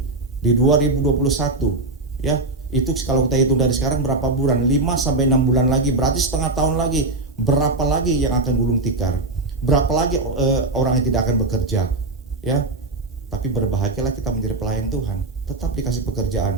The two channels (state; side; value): quieter; left; 3.2 dB